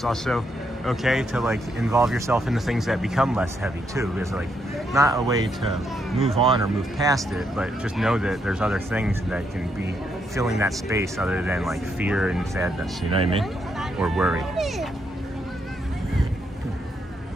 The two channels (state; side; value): normal; both; correlation 0.77